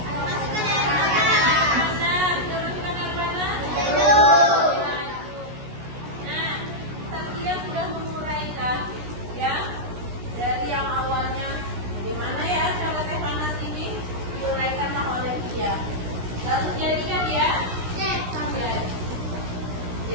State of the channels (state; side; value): late; left; 16 ms